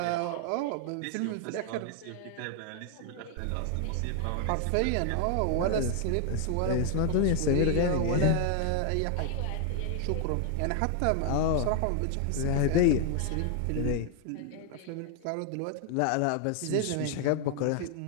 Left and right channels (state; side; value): different; both; correlation 0.00